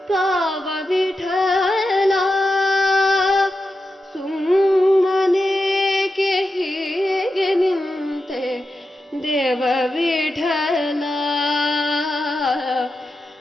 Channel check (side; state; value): both; normal; correlation 0.89